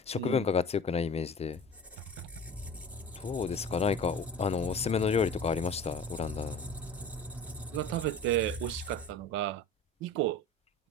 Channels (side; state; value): both; normal; correlation 0.38